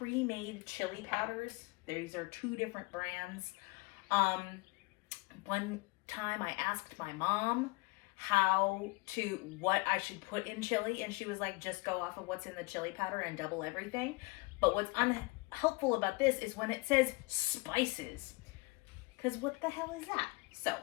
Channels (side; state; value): right; quieter; 26.6 dB